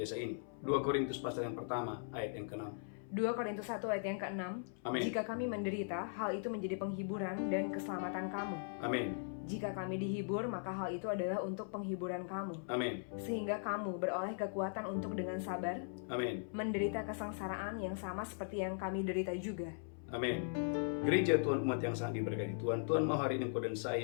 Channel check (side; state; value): right; silent; 52 dB below the other